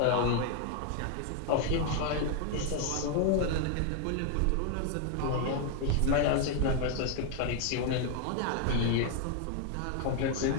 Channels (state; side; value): different; both; correlation 0.01